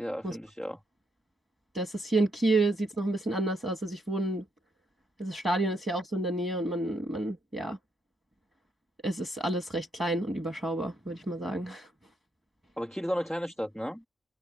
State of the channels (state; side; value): normal; both; correlation 0.77